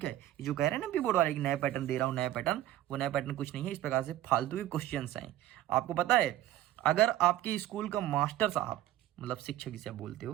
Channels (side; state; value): left; quieter; 13.7 dB